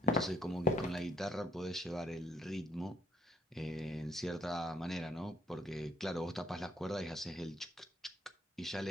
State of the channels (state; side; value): normal; both; correlation 0.68